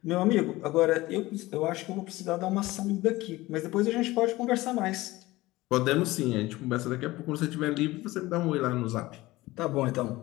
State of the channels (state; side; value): quieter; right; 19.0 dB